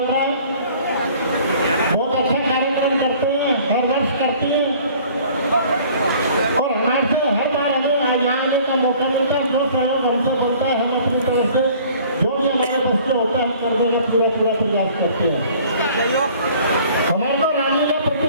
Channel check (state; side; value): inverted; both; correlation -0.52